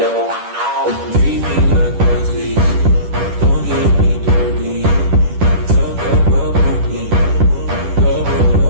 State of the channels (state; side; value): late; left; 10 ms